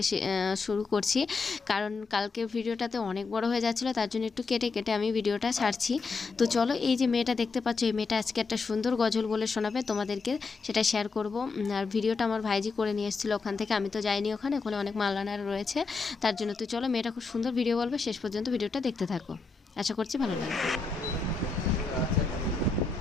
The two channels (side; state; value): right; quieter; 4.3 dB